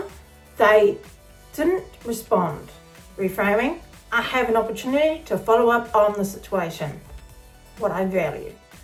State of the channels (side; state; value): both; identical; correlation 1.00